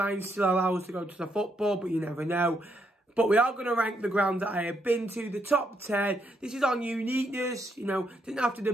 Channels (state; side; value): normal; both; correlation 0.77